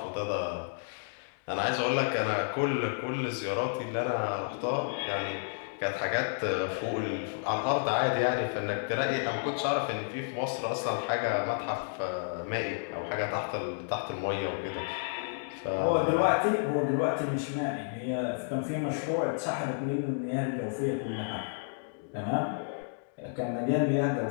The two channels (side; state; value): right; silent; digital silence